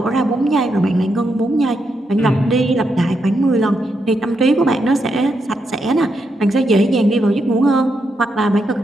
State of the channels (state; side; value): normal; both; correlation 0.82